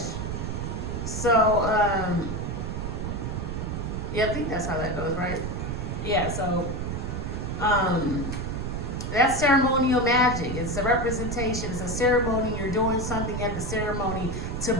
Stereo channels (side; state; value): right; noise; rumble, 3 dB below the sound